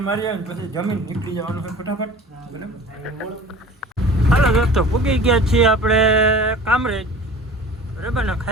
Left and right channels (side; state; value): both; normal; correlation 0.42